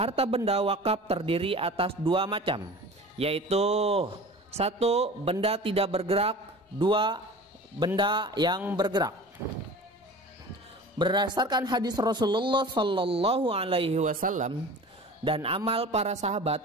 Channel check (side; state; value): both; normal; correlation 0.38